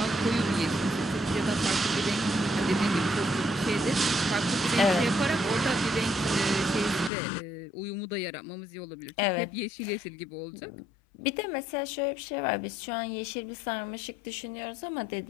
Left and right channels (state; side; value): drops out; right; at 7.1 s